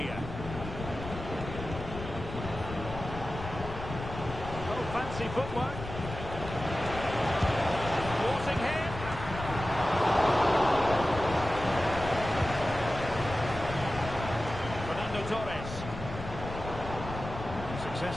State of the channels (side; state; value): left; noise; rumble, 9 dB below the sound